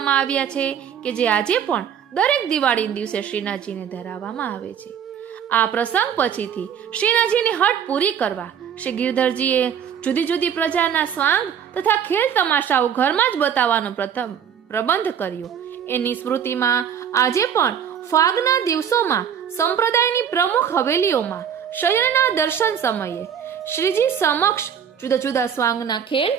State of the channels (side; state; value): left; quieter; 8.3 dB